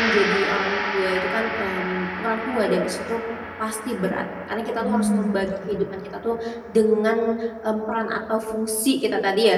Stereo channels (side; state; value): both; identical; correlation 1.00